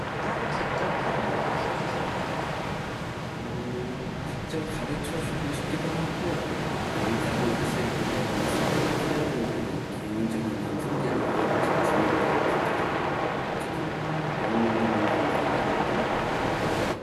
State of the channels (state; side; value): identical; both; correlation 1.00